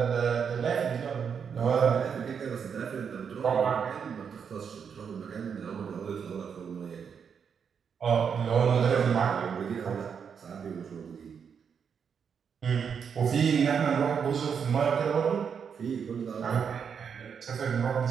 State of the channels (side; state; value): left; quieter; 6.9 dB